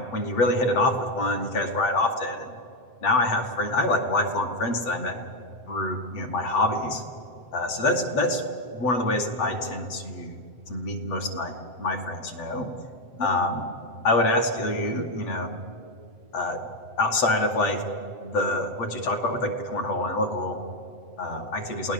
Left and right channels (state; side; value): late; right; 7.9 ms